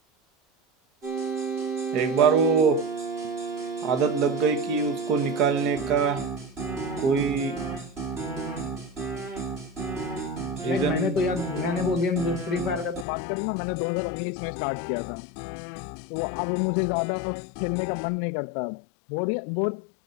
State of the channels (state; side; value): drops out; right; at 13.1 s